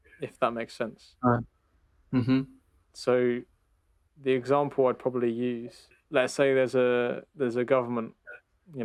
if that makes sense. right. Mm-hmm. So the example I'd probably use, let's say there's a government,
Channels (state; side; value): identical; both; correlation 1.00